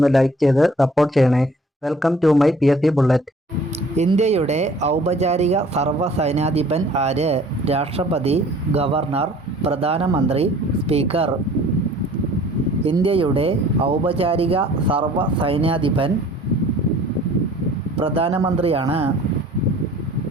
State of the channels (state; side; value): normal; both; correlation 0.52